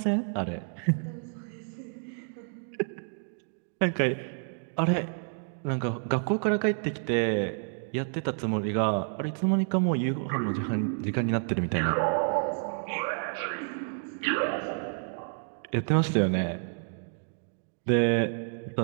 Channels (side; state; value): left; silent; 58 dB below the other